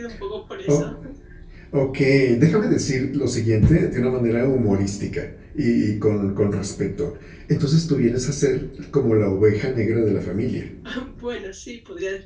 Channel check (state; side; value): identical; both; correlation 1.00